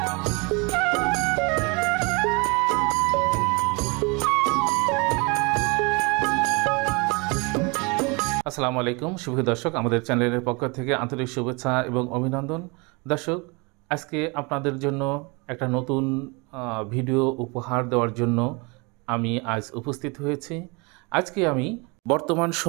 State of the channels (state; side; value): quieter; left; 29.1 dB